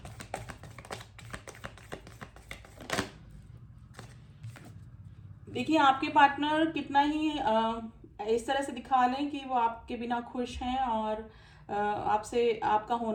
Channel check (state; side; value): identical; both; correlation 1.00